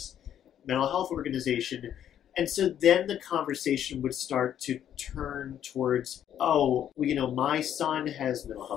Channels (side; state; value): right; quieter; 10.2 dB